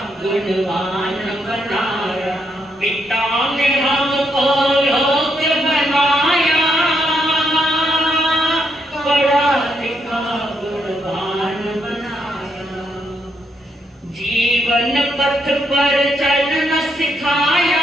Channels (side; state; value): both; normal; correlation 0.78